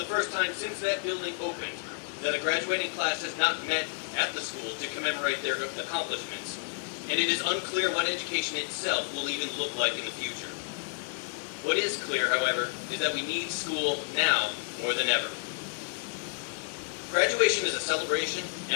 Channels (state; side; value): silent; right; 58 dB below the other